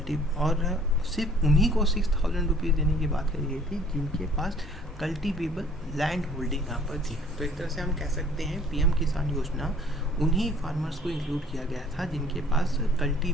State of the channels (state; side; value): normal; both; correlation 0.55